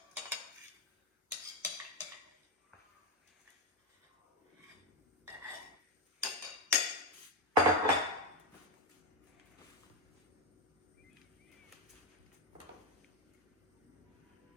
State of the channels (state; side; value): normal; both; correlation 0.09